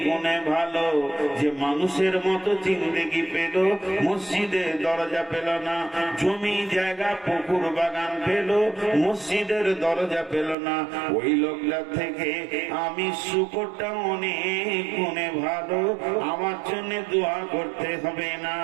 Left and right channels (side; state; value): left; drops out; at 10.6 s